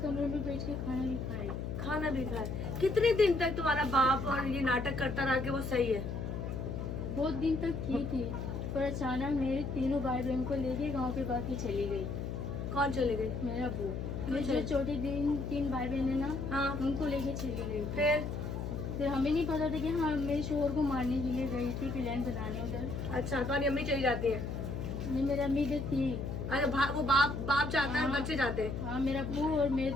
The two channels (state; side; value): noise; left; hum, 4 dB below the sound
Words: कमरे में बैठ के खाना भी खाई। खाना भी खाया? कितने दिन तक तुम्हारा बाप और ये नाटक करता रहा कि वो सही है? बहुत दिन तक की थी, पर अचानक मेरे तीनों भाई बहन को लेके गांव के बाकी चली गई। कौन चले गई? मेरा अब्बू, क्यों मेरे जो चली? छोटे 3 भाई बहन है ना, हाँ, उनको लेके चली गई। फिर? हमें नहीं पता था कि हाँ मेरे शोहर को मारने के लिए गई थी, प्लान बनाने उधर। अच्छा, तुम्हारी अम्मी चली जाती है? नहीं मेरा अम्मी इधर थी। अच्छा, वो बाप जाता है और हाँ। बच्चे जाते हैं? हाँ मेरा अब्बू और मेरे